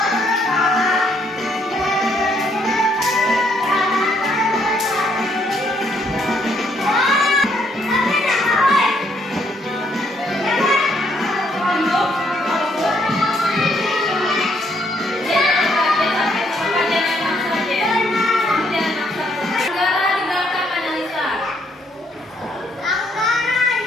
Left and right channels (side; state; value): both; normal; correlation 0.71